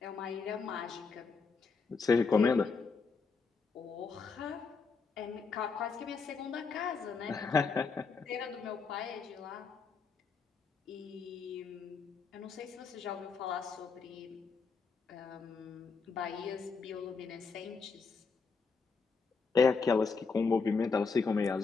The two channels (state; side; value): quieter; right; 4.8 dB